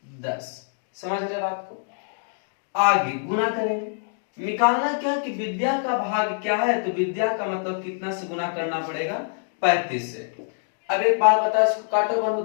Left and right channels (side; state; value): right; silent; digital silence